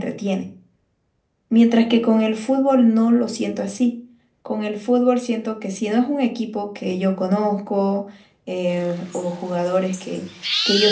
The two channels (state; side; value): identical; both; correlation 1.00